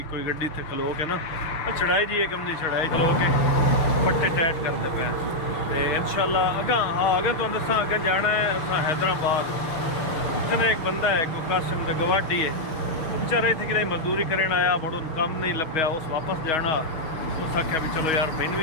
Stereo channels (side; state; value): right; late; 6.3 ms